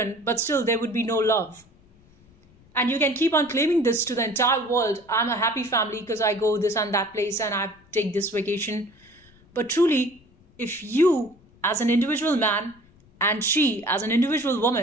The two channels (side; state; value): left; noise; rumble, 29 dB below the sound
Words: but still there would be no love. And you can keep on claiming this to the entire world. I'm a happy family because I go this and that place and I take this vacation. But truly, if you as an individual man and she as an individual